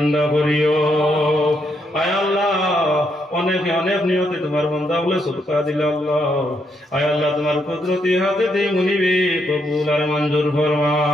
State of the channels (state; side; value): normal; both; correlation 0.77